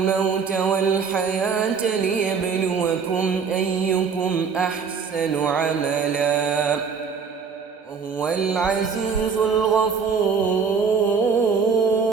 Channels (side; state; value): left; quieter; 5.8 dB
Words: والحياة ليبلوكم أيكم أحسن عملا وهو العزيز الغفور.